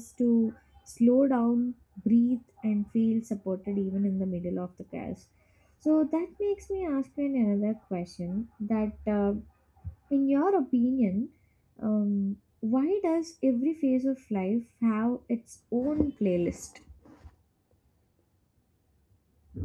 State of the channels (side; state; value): both; identical; correlation 1.00